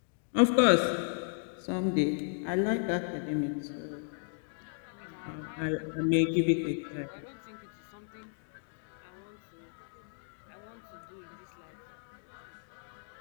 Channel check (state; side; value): silent; right; digital silence